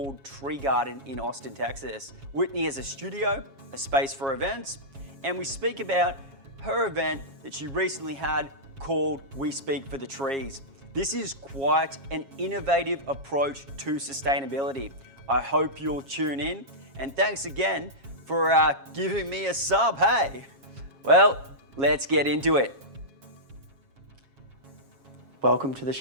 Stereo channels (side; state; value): left; late; 7.3 ms